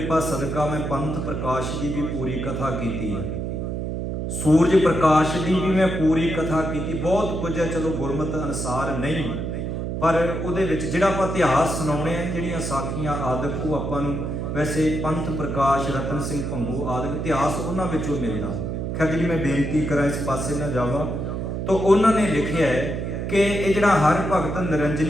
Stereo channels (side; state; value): right; noise; hum, 3 dB below the sound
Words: ਸਦਕਾ ਮੈਂ ਪੰਥ ਪ੍ਰਕਾਸ਼ ਦੀ ਵੀ ਪੂਰੀ ਕਥਾ ਕੀਤੀ ਹੈ, ਸੂਰਜ ਪ੍ਰਕਾਸ਼ ਦੀ ਵੀ ਮੈਂ ਪੂਰੀ ਕਥਾ ਕੀਤੀ। ਬਹੁਤ ਕੁਝ ਹੈ, ਚਲੋ ਗੁਰਮਤਿ ਅਨੁਸਾਰ ਨਹੀਂ, ਪਰ ਉਹਦੇ ਵਿੱਚ ਜਿਹੜਾ ਆਪਾਂ ਇਤਿਹਾਸ ਸੁਣਾਉਣੇ ਆ, ਜਿਹੜੀਆਂ ਸਾਖੀਆਂ ਆਦਿਕ, ਉਹ ਆਪਾਂ ਨੂੰ ਵੈਸੇ ਪੰਥ ਪ੍ਰਕਾਸ਼, ਰਤਨ ਸਿੰਘ ਭੰਗੂ ਆਦਿਕ ਇਤਿਹਾਸ ਉਹਨਾਂ ਵਿੱਚੋਂ ਮਿਲਦਾ। ਖੈਰ ਜਿਹੜੀ ਮੈਂ ਬੇਨਤੀ ਕਰਾਂ ਇਸ ਪਾਸੇ ਨਾ ਜਾਵਾਂ, ਤਾਂ ਉਹਨਾਂ ਨੇ ਲਿਖਿਆ ਹੈ ਕਿ ਇਹ ਜਿਹੜਾ ਹਰ ਭਗਤ